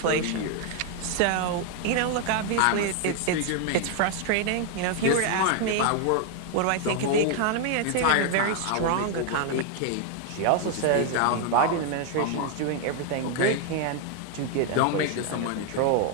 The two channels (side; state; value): both; different; correlation 0.00